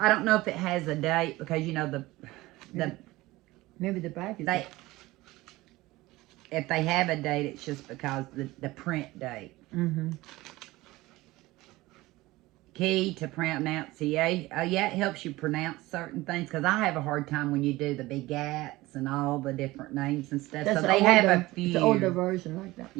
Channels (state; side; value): quieter; left; 19.2 dB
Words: don't know if it has a date because, you know, Maybe the back is... if they have a date, it's just because the print date. Mm-hmm. Key to pronunciation. Oh, yeah, it helps you pronounce certain things because I have a hard time when you do the big gats and all the different names and stuff. That's so they have a few. It's an older version like that.